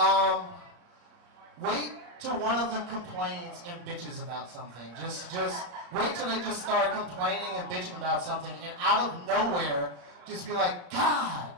Wait till one of them complains and bitches about something. Just wait till they just start complaining and bitching about something, and out of nowhere, just be like, God,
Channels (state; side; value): late; left; 34 ms